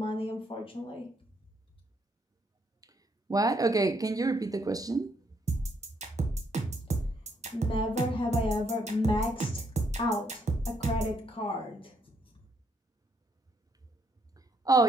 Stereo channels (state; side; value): normal; both; correlation 0.73